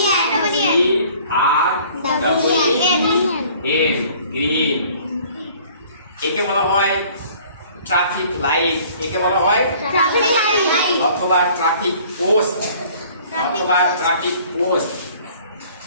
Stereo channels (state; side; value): inverted; both; correlation -0.53